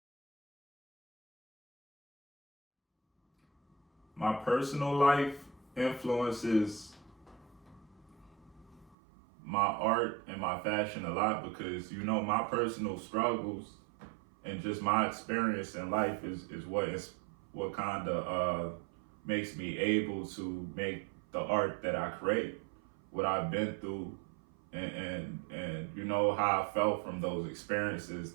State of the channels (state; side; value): drops out; left; at 9.0 s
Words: My personal life influences my art and my fashion a lot, because my personal struggles and just my experience in life is what kind of makes me able to make the art that I create. What I've been through, and how I felt from those experiences